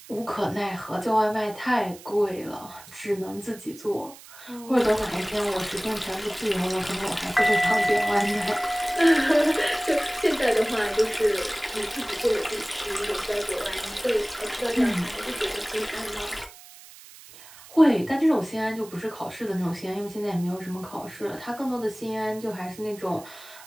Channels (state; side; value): noise; right; hiss, 19 dB below the sound